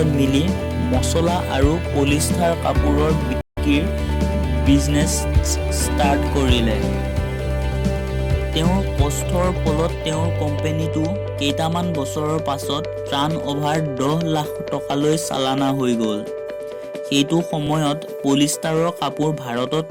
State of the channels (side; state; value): both; identical; correlation 1.00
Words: মিলি মছলা আৰু পলিষ্টাৰ কাপোৰৰ বিক্ৰীৰ বিজনেছ ষ্টাৰ্ট কৰিলে। তেওঁৰ কষ্টৰ ফলত তেওঁৰ কোম্পানীটো কেইটামান বছৰৰ পাছত টাৰ্ণঅভাৰ 10 লাখ টকালৈ চালানা হৈ গ'ল। সেইটো সময়ত পলিষ্টাৰৰ কাপোৰ ভাৰতত